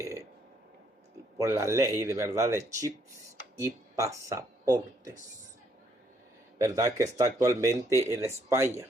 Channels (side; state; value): both; normal; correlation 0.69